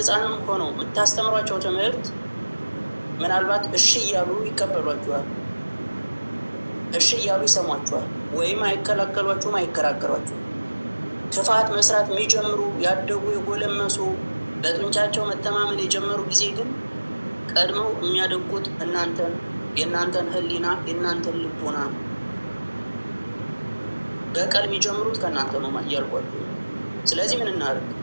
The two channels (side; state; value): both; inverted; correlation -1.00